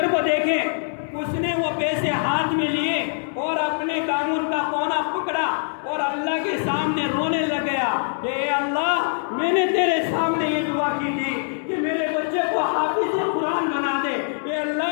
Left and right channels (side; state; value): right; silent; digital silence